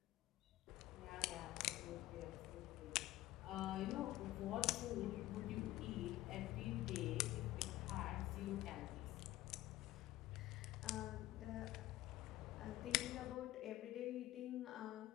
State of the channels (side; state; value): right; quieter; 16.0 dB